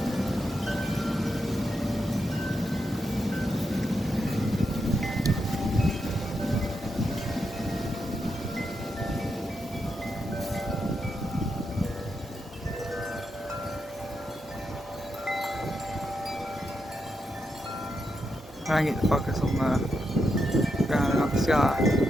I get to focus on the ground and not the sky.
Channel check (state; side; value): normal; both; correlation 0.84